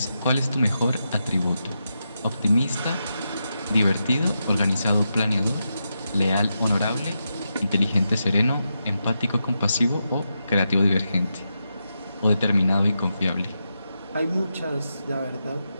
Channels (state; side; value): inverted; both; correlation -0.87